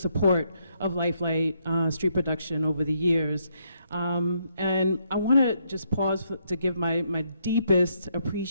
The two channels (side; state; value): both; inverted; correlation -0.75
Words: of Lifelight Street Production over the years. And I want to just pause to give my deepest